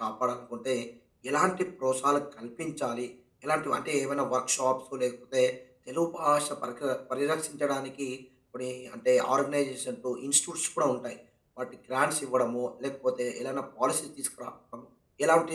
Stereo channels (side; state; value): both; identical; correlation 1.00